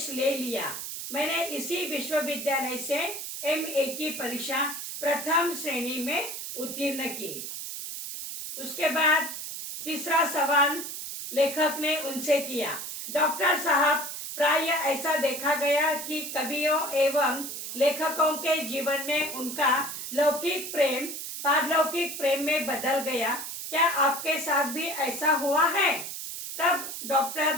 ले लिया। मैंने इसी विश्वविद्यालय से MA की परीक्षा प्रथम श्रेणी में उत्तीर्ण की। उसके बाद तीसरा सवाल लेखक ने उनसे किया, डॉक्टर साहब, प्राय ऐसा देखा गया कि कवियों एवं लेखकों के जीवन में उनका लौकिक प्रेम पारलौकिक प्रेम में बदल गया। क्या आपके साथ भी ऐसा हुआ है? तब डॉक्टर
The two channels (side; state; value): right; noise; hiss, 7 dB below the sound